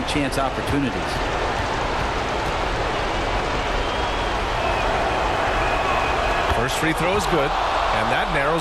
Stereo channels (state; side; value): identical; both; correlation 1.00